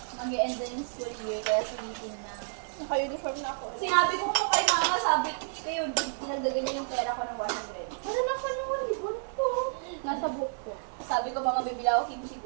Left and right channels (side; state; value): left; silent; digital silence